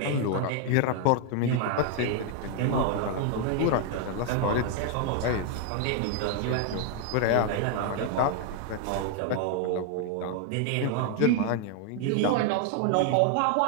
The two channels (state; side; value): different; both; correlation 0.00